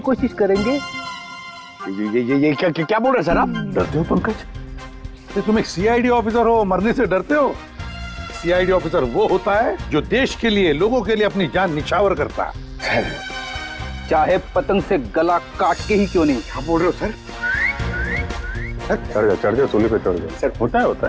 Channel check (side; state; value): both; identical; correlation 1.00